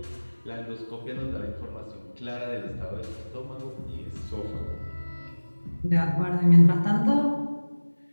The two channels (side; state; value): both; inverted; correlation -1.00